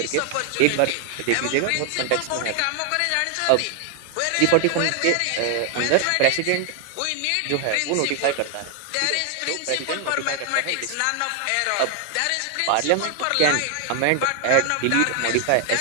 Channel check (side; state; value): both; different; correlation 0.00